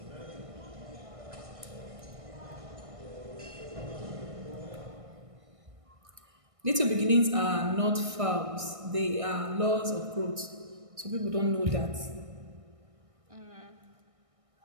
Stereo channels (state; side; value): late; left; 1.6 ms